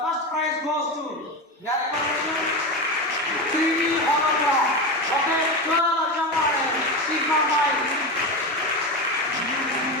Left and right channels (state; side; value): normal; both; correlation 0.19